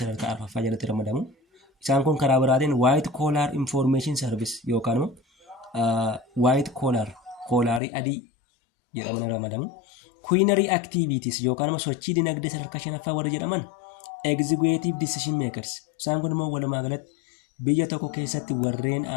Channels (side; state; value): right; drops out; at 7.8 s